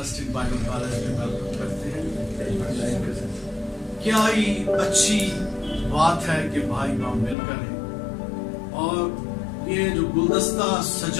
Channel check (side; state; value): right; drops out; at 7.4 s